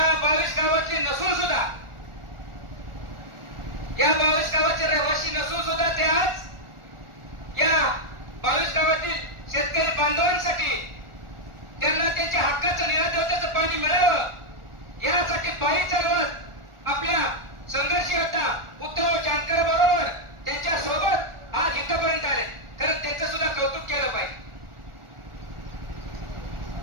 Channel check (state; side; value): late; left; 1.4 ms